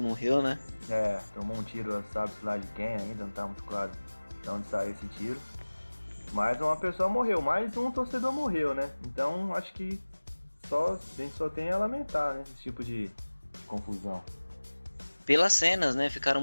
morreu, né? Tomou um tiro, sabe-se lá de quem ainda, não tá muito claro de onde saiu esse tiro. Mas uma pessoa morreu, mais um torcedor morreu, né? Então acho que a gente só tem a lamentar, né? Esse tipo de confusão. Pelas cenas, né? Ficaram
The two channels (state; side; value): inverted; both; correlation -1.00